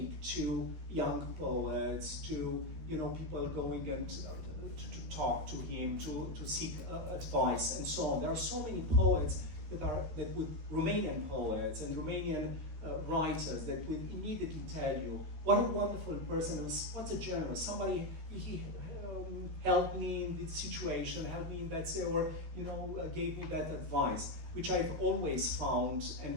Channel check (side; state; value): left; late; 13 ms